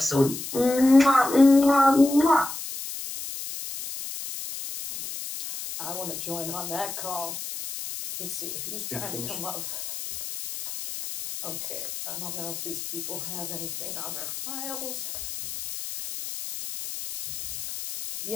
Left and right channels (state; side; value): noise; left; hiss, 8 dB below the sound